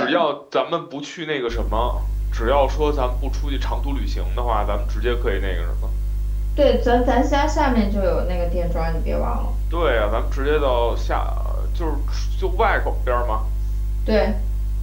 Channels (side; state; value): both; identical; correlation 1.00